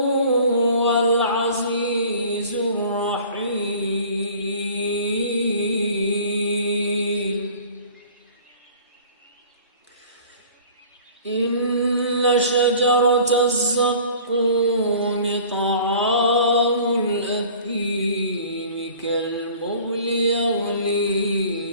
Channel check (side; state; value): both; inverted; correlation -0.47